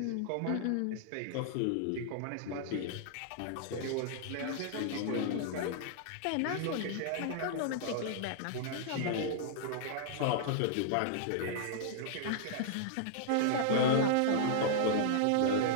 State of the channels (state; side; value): different; both; correlation -0.01